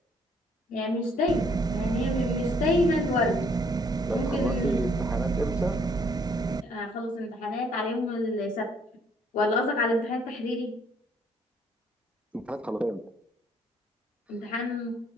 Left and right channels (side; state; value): both; normal; correlation 0.65